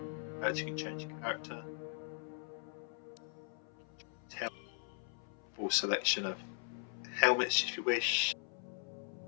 You can change your character. Full selection of helmets if you wish.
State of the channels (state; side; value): silent; right; 51 dB below the other